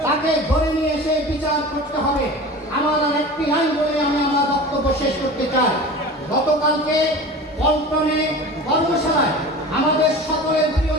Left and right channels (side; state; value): both; normal; correlation 0.35